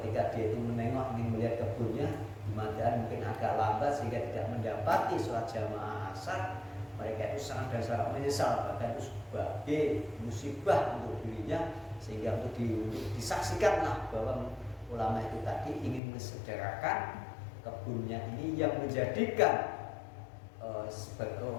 dia itu menengok ingin melihat kebunnya kemudian mungkin agak lambat sehingga tidak mendapati sholat jamaah asar, mereka itu sangat dan sangat menyesal, bahkan itu sebagai musibah untuk dirinya, sehingga untuk disaksikanlah bahwa ulama itu tadi ingin mensedekahkan kebunnya ini yang menjadikan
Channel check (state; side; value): drops out; right; at 16.0 s